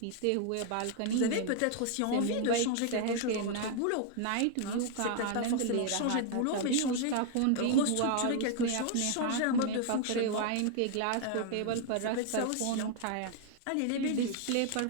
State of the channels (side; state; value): both; different; correlation 0.00